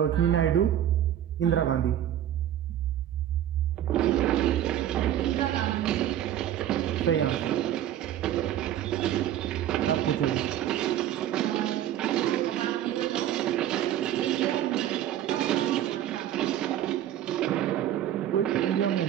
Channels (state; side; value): quieter; left; 11.5 dB